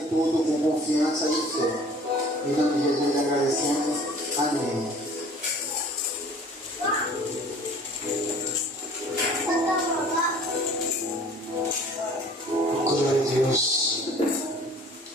com confiança e fé. Em nome de Jesus agradecemos. Amém. Glória a Deus.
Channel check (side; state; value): both; normal; correlation 0.49